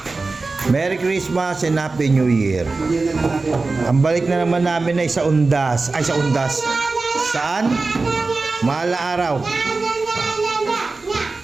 Merry Christmas and Happy New Year. Ang balik na naman namin ay sa Undas. Ay, sa Undas. Saan? Mala araw.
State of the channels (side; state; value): left; quieter; 3.7 dB